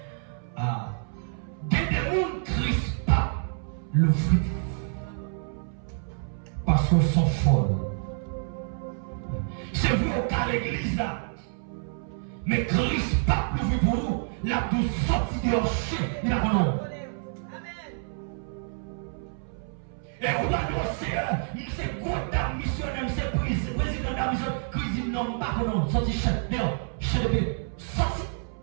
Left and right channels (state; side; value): silent; left; 59 dB below the other